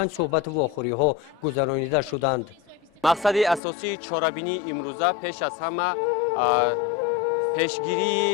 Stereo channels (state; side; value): drops out; right; at 3.6 s